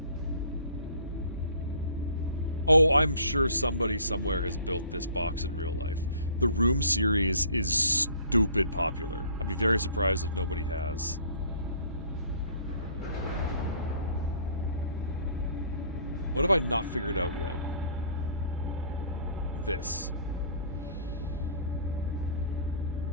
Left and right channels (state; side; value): inverted; both; correlation -0.52